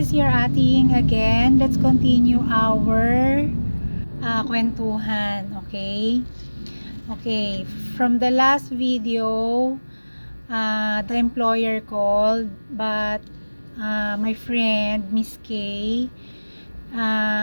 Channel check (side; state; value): both; inverted; correlation -1.00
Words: your ating again. Let's continue our kwentuhan, okay? Okay, from the last video, the employer called, but my friend, Miss K,